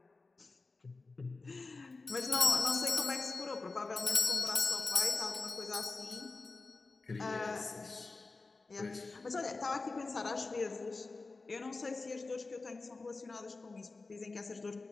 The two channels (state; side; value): quieter; right; 3.7 dB